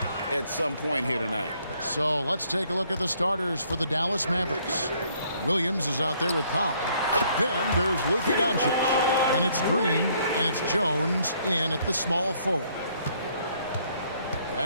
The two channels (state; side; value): inverted; both; correlation -0.66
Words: at some point here tonight. So let's take a look at the starters for the Dallas Mavericks. Williams is out there with Powell. Then there's Luka Doncic. And it's Green, and it's Jones in at the small forward.